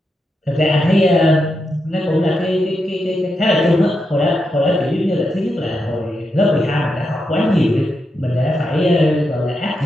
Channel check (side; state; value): both; normal; correlation 0.85